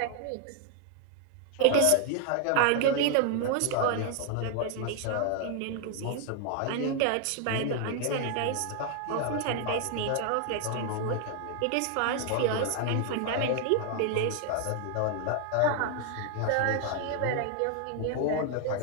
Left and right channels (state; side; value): different; both; correlation 0.00